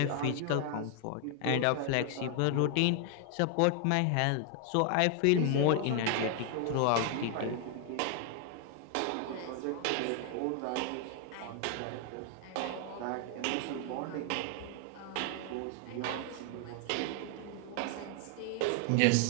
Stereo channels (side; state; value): both; different; correlation 0.00